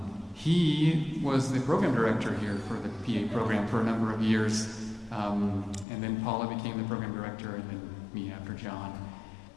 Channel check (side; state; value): right; drops out; at 5.9 s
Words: He was the program director here for the PA program for a number of years, and then Paula became the program director, and then me after John.